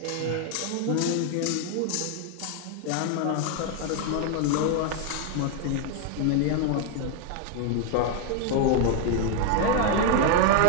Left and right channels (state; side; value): different; both; correlation 0.01